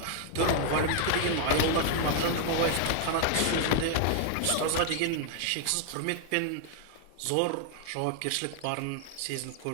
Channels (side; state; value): both; different; correlation 0.00